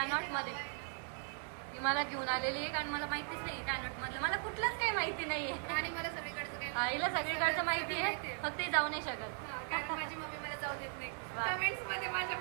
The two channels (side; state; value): left; silent; 52 dB below the other